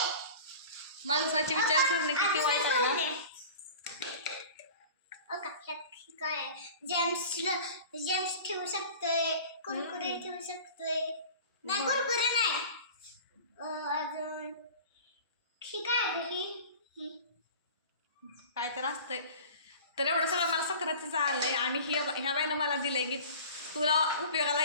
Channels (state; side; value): inverted; both; correlation -0.39